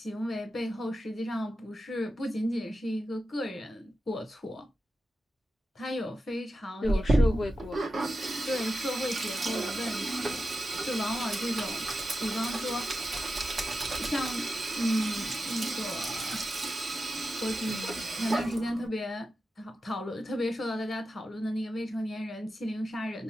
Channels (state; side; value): normal; both; correlation 0.91